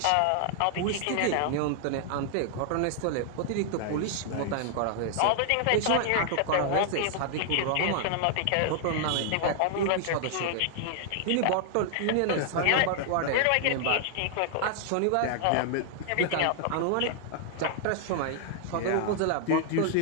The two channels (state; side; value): different; both; correlation -0.01